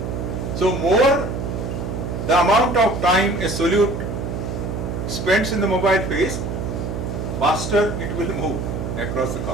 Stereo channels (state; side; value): noise; right; hum, 4 dB below the sound